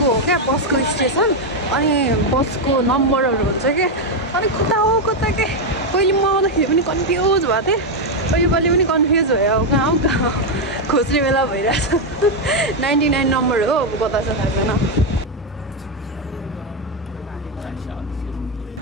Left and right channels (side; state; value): both; normal; correlation 0.04